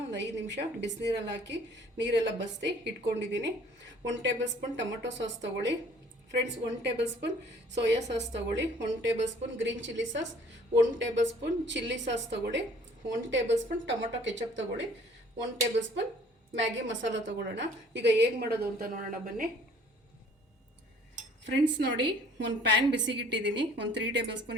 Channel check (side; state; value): both; normal; correlation 0.55